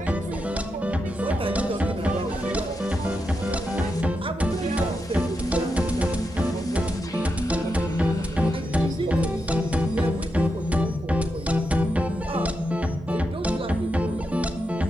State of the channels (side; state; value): both; normal; correlation 0.86